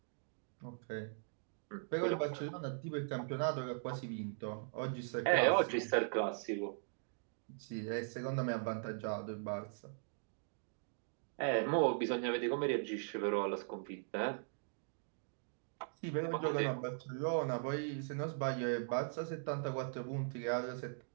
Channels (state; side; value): silent; left; digital silence